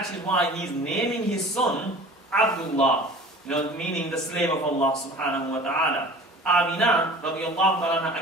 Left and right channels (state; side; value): normal; both; correlation 0.43